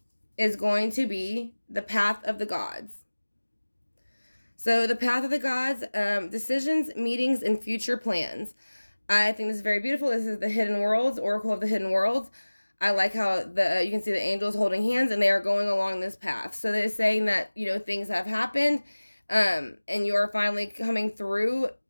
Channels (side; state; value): both; inverted; correlation -1.00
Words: is going to be the Path of the Gods. So the Path of the Gods, decisions, meetings, and future plans. I think this is very beautiful. This is the Hidden Worlds, Oracle of the Hidden Worlds. I like how you can see the angels holding hands and they are going along this path. So they're saying that, things have happened and you are finally coming through